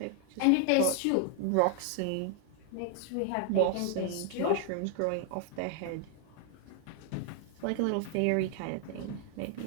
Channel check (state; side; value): different; both; correlation 0.00